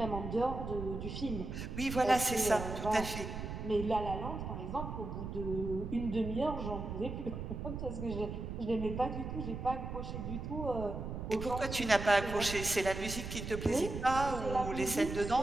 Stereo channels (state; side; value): noise; right; rumble, 6 dB below the sound